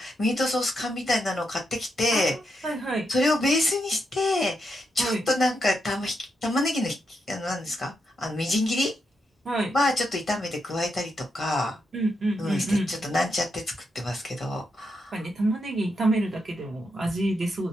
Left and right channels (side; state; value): both; normal; correlation 0.83